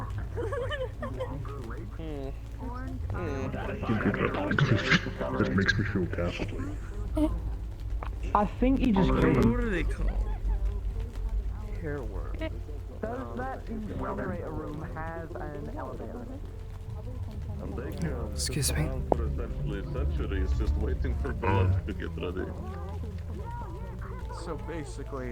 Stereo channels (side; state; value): both; identical; correlation 1.00